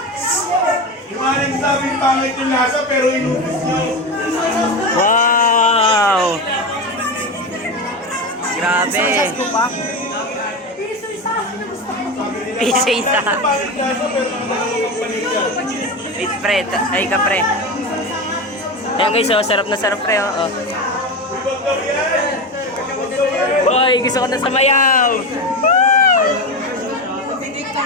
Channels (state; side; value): normal; both; correlation 0.20